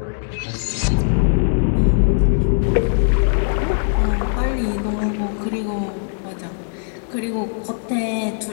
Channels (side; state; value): right; silent; digital silence